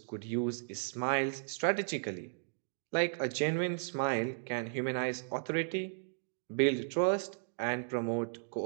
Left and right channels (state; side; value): silent; left; digital silence